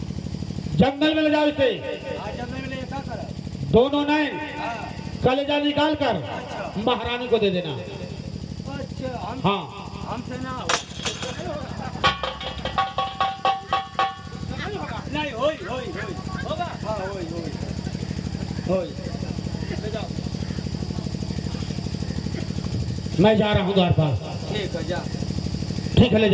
जंगल में ले जाओ इसे। आज जब मैं क्या करा? दोनों नैन हाँ कलेजा निकाल कर अच्छा महारानी को दे देना। अच्छा हम हाँ हमसे ना हो। नहीं होई होई होई होगा। हाँ होई होई होई। ले जाओ। मैं जा रहा हूँ द्वारपाल। ठीक है जा। ठीक है, ले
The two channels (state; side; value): identical; both; correlation 1.00